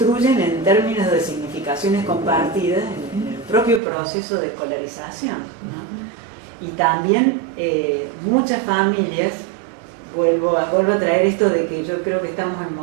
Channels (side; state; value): left; drops out; at 3.8 s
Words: en términos de significaciones compartidas en el propio proceso de escolarización, ¿no? Y también muchas familias, vuelvo a traer esto de que yo creo que estamos en